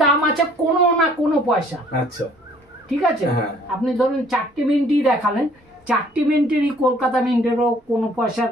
দাম আছে কোনো না কোনো পয়সা। আচ্ছা ঠিক আছে, আপনি ধরুন 4টে মিন্টই দেখালেন, 4টে মিন্টেরই কলকাতা মিন্টেরও কোনো পয়সার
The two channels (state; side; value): normal; both; correlation 0.58